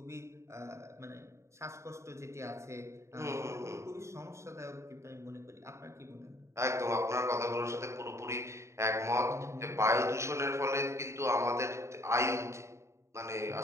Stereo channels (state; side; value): late; left; 0.14 ms